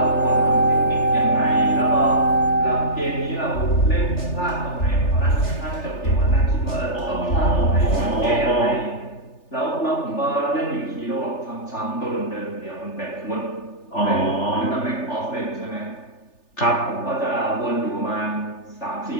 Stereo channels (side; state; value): right; late; 3.4 ms